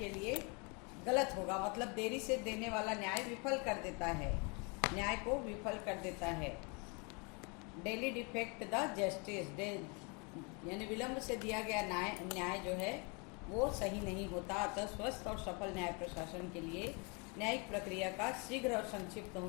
लिए गलत होगा। मतलब देरी से देने वाला न्याय विफल कर देता है, न्याय को विफल कर देता है। डेली डिफेक्ट द जस्टिस, यानी विलम्ब से दिया गया न्याय जो है वो सही नहीं होता। अतः स्वस्थ और सफल न्याय प्रशासन के लिए न्यायिक प्रक्रिया का शीघ्र और संक्षिप्त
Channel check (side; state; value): right; quieter; 32.4 dB